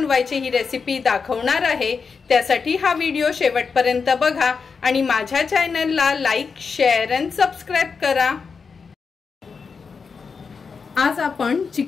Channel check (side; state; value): right; quieter; 5.3 dB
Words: ही रेसिपी दाखवणार आहे। त्यासाठी हा व्हिडिओ शेवटपर्यंत बघा आणि माझ्या चॅनलला लाईक, शेअर आणि सबस्क्राइब करा। आज आपण